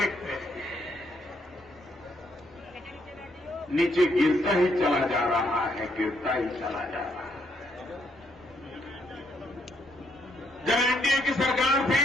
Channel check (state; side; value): normal; both; correlation 0.73